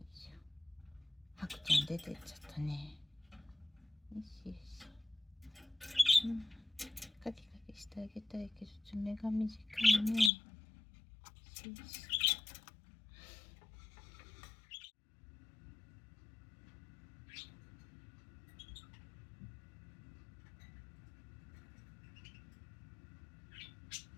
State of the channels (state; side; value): drops out; right; at 10.3 s